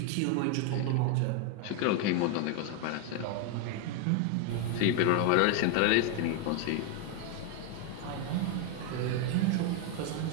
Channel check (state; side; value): different; both; correlation 0.01